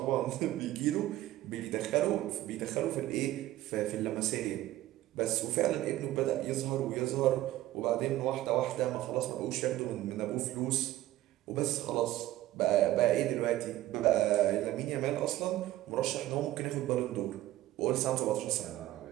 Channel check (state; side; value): quieter; left; 15.1 dB